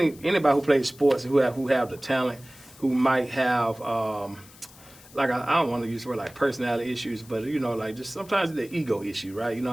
who plays sports who have the talent, who might have. Like, I don't want to use the word like personality issues, but, you know, like, just sometimes the ego issue, right? You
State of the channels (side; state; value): left; noise; hiss, 22 dB below the sound